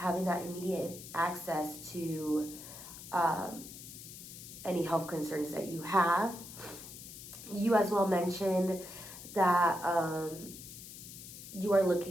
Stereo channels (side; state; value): left; noise; hiss, 13 dB below the sound